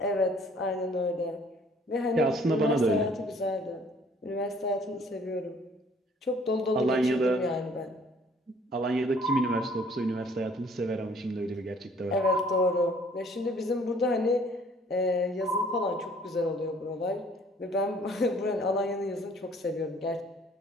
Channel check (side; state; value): both; normal; correlation 0.58